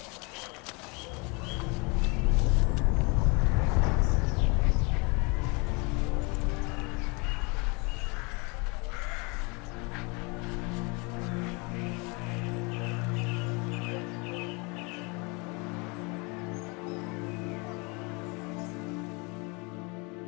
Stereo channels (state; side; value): quieter; right; 29.8 dB